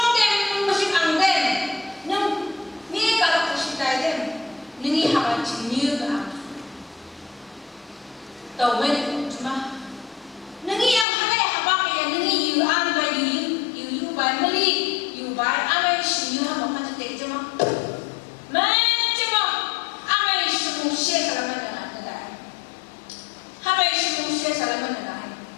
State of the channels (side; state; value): right; drops out; at 11.1 s